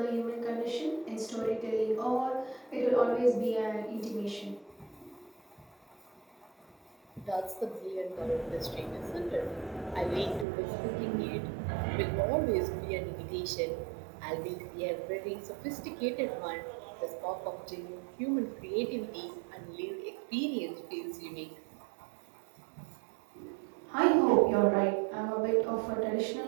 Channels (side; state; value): left; drops out; at 10.5 s